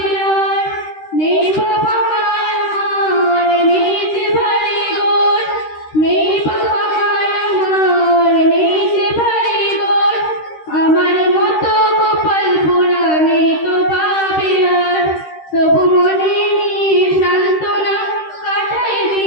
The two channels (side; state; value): right; late; 13 ms